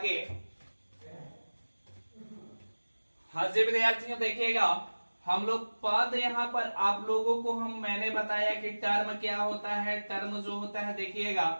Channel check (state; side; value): inverted; both; correlation -1.00